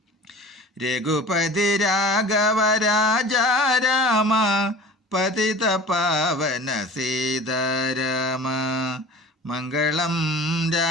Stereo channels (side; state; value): both; normal; correlation 0.40